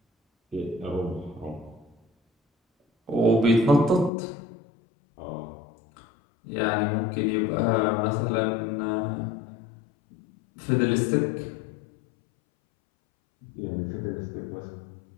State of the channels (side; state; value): right; drops out; at 4.1 s